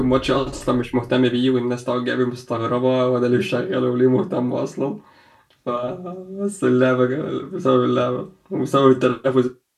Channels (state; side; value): identical; both; correlation 1.00